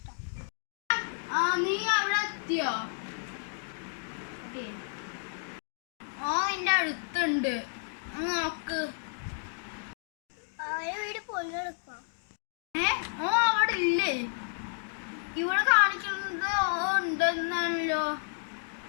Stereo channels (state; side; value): silent; right; digital silence